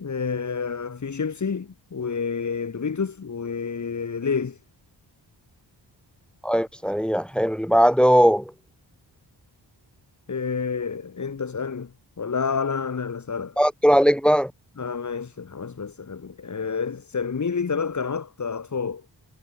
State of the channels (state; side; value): normal; both; correlation 0.61